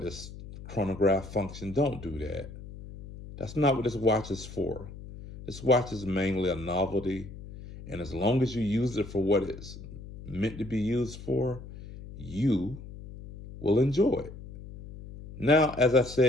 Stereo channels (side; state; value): left; noise; hum, 14 dB below the sound